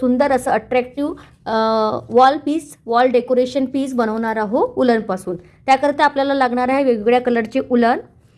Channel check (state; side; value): identical; both; correlation 1.00